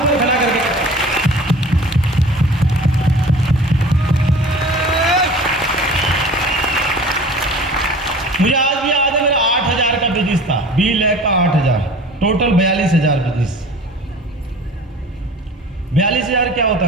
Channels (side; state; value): both; normal; correlation 0.43